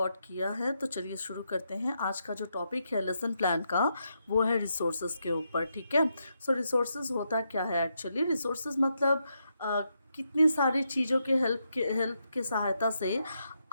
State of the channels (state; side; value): inverted; both; correlation -0.82